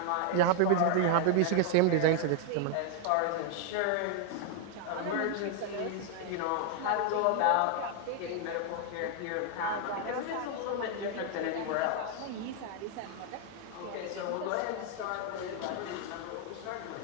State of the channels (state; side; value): different; both; correlation 0.00